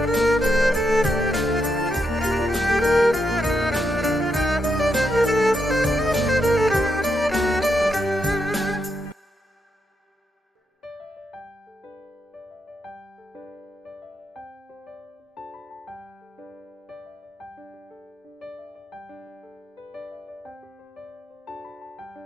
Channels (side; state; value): both; normal; correlation 0.82